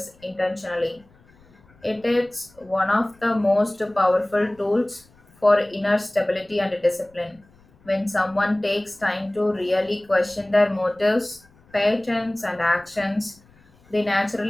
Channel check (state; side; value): noise; left; rumble, 30 dB below the sound